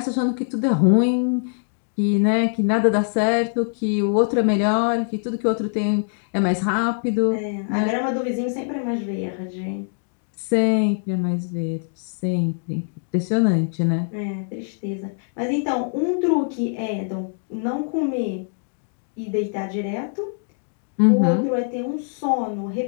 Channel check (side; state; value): right; silent; digital silence